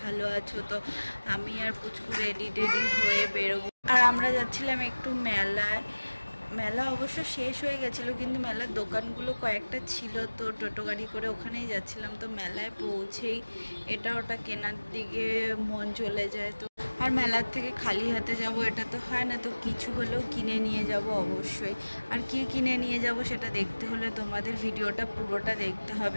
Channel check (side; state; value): both; inverted; correlation -1.00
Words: ভালো আছো। তো আমি আর পুচকু রেডি হয়ে বেরোবো, আর আমরা যাচ্ছিলাম একটু মেলায়। মেলা অবশ্য শেষ হয়ে গেছিলো, কিন্তু মেলার দোকানগুলো কয়েকটা ছিল, তো টোটো গাড়ি করে ওখানেই যাচ্ছিলাম। তো মেলায় পৌঁছেই এটা ওটা কেনার দিকে মন চলে যায়। তো আর মেলার থেকে খালি হাতে যাব এটা তো হয় না, তো কিছু হলেও কিনে নিয়ে যাব অবশ্যই। আর কি কিনে নিয়ে যাব সেটা দেখতে হলে তোমাদের ভিডিওটা পুরোটা দেখতে